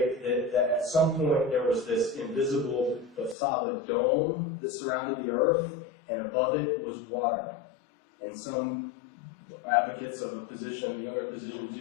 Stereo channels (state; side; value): drops out; right; at 3.4 s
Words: that at some point there was this invisible but solid dome that surrounded the earth, and above it was water. And some advocates of a position, the younger position,